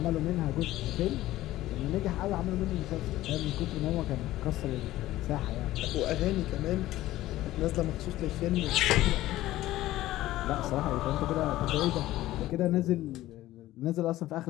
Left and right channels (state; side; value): quieter; right; 15.6 dB